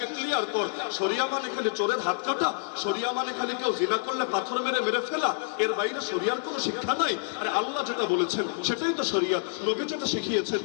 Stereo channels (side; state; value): right; silent; 59 dB below the other